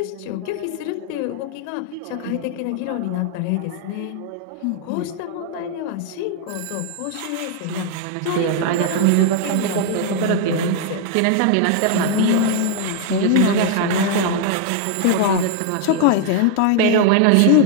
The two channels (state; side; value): different; both; correlation 0.00